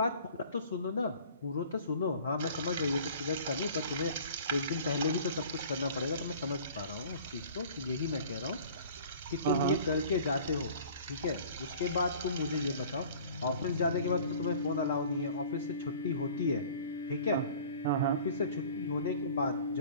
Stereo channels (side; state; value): both; inverted; correlation -0.47